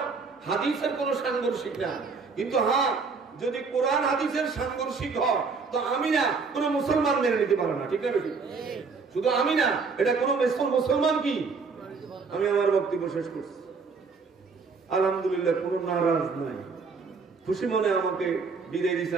হাদিসের কোনো সাংঘর্ষিক না। কিন্তু হ্যাঁ, যদি কোরআন হাদিসের সাংঘর্ষিক হয় তো আমি না কোনো মুসলমান মেনে নিতে পারে না, ঠিক না বেশি? শুধু আমি না, এটা কোনো মুসলমান কি? আমি আমার বক্তব্য শেষ করছি। আলহামদুলিল্লাহ, কোনো নারাজ নাই, খুশি মনে আমাকে বিদায় দিছে,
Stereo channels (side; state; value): left; quieter; 4.8 dB